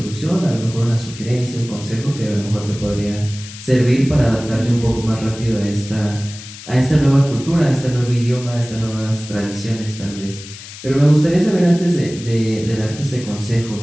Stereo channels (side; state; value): left; noise; hiss, 15 dB below the sound